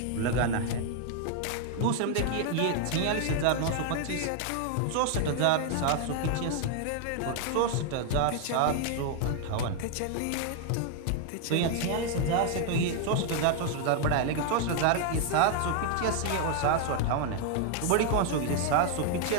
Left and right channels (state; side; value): different; both; correlation 0.00